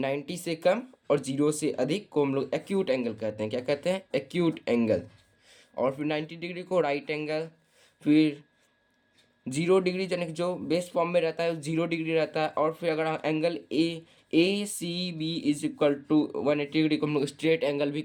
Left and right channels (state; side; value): identical; both; correlation 1.00